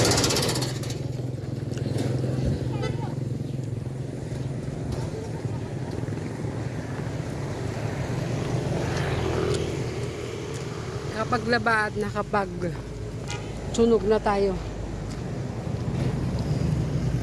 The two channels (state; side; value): identical; both; correlation 1.00